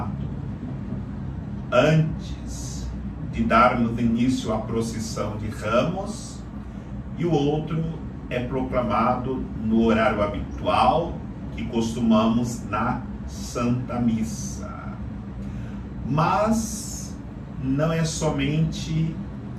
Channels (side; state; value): both; identical; correlation 1.00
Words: antes de darmos início à procissão de Ramos e o outro é proclamado no horário habitual que costumamos na Santa Missa. Mas não é somente